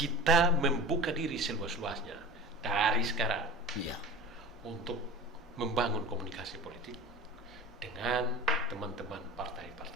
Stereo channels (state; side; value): normal; both; correlation 0.34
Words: membuka diri seluas-luasnya dari sekarang Iya. untuk membangun komunikasi politik dengan teman-teman